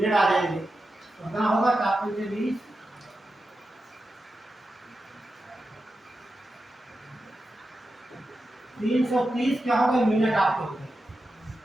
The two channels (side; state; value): both; normal; correlation 0.90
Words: आ जाएंगे। तो कितना होगा, 4 पंचे 20, 330 क्या हो गए, मिनट आपके हो गए।